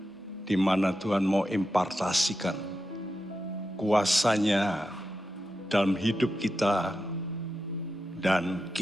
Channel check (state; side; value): normal; both; correlation 0.89